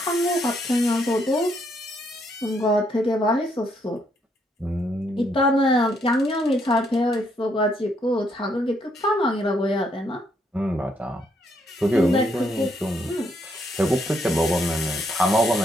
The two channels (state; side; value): normal; both; correlation 0.73